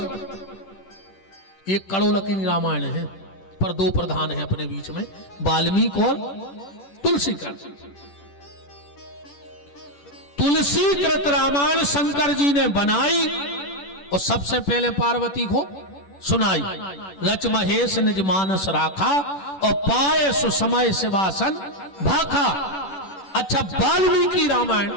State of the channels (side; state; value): right; late; 10 ms